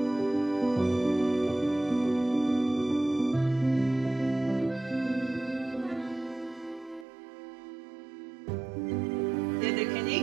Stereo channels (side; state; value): left; drops out; at 7.1 s